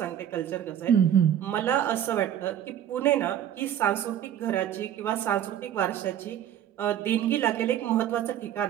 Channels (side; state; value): left; quieter; 10.5 dB